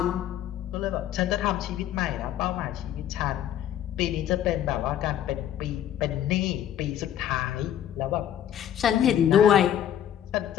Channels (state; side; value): quieter; right; 10.8 dB